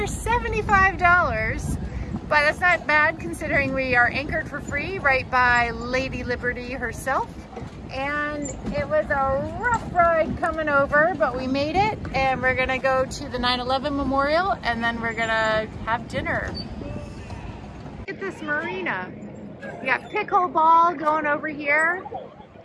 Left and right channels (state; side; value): identical; both; correlation 1.00